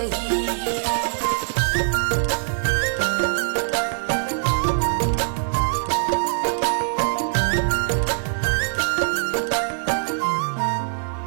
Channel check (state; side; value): silent; left; 57 dB below the other